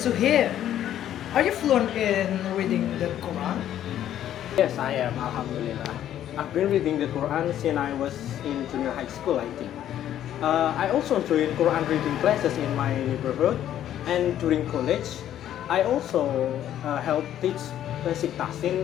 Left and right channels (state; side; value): quieter; right; 11.3 dB